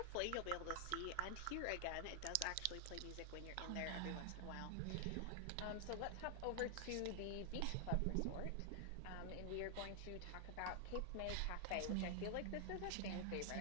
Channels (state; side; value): different; both; correlation 0.00